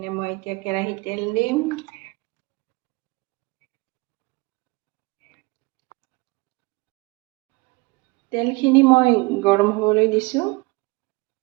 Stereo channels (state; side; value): quieter; left; 25.0 dB